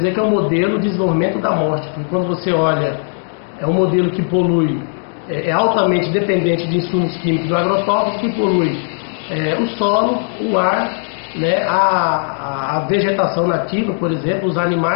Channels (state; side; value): silent; right; digital silence